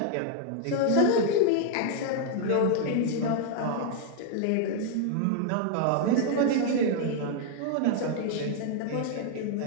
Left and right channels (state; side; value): different; both; correlation 0.00